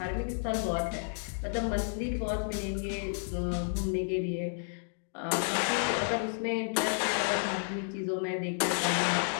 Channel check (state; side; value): silent; right; digital silence